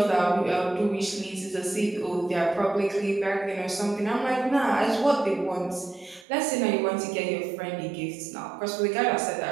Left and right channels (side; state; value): left; drops out; at 6.2 s